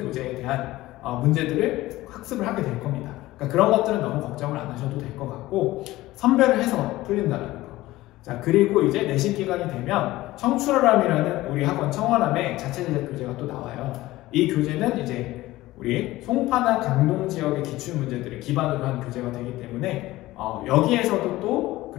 대한 문제들을 학습을 하게 될 겁니다. 그러니까 그런 것들은 너무 걱정을 안 하셔도 될 것 같고, 선별을 해서 풀린다는 거. 자, 그리고 이제 내신 기간이 되면 청출어람이라는 우리 학원 청어람의 자체 제작 교재가 또 나와요. 이 교재는 이제 우리 송파나 강동 지역의 기출 문제들을 기반으로 한 교재가 되기 때문에 여기에서도 또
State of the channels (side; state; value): right; quieter; 17.4 dB